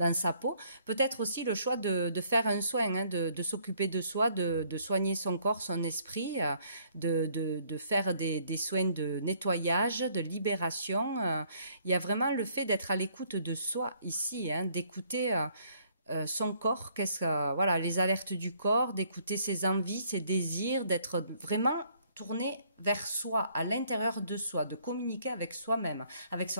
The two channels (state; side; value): inverted; both; correlation -0.64